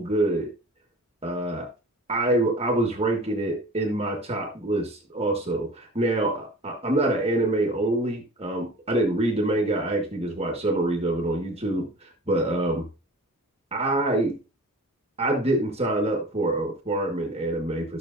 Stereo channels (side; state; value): both; normal; correlation 0.40